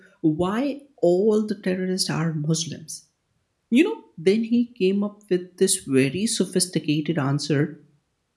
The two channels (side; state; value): both; identical; correlation 1.00